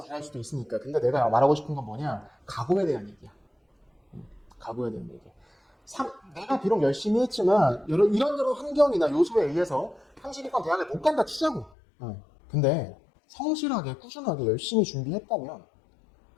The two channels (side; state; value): right; drops out; at 11.7 s